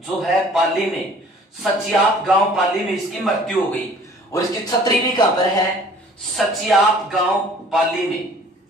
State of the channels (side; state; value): both; normal; correlation 0.52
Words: है पाली में, सचियाप गांव पाली में इसकी मृत्यु हो गई। और इसकी छतरी भी कहां पर है? सचियाप गांव पाली में।